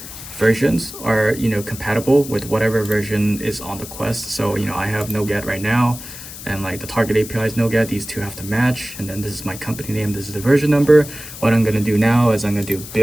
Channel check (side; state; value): left; noise; hiss, 13 dB below the sound